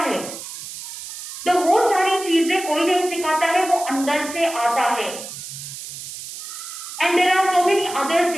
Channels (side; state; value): right; noise; hiss, 11 dB below the sound